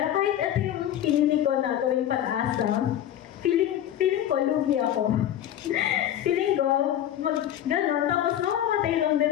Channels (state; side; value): quieter; right; 11.3 dB